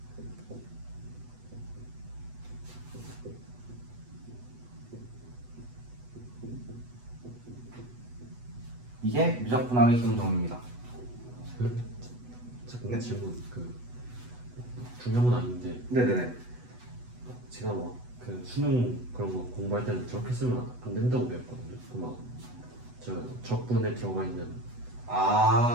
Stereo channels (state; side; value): late; left; 8.1 ms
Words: 이게 미적분학의 기본 정리입니다. 잠깐 질문. 그 중요한 건 아닌데 네네네. 제가 막 그 수능 그런 거 공부할 때는 저렇게 쓰면 안 된다고 배웠거든요. 그 막 저 적분에 들어가 있는.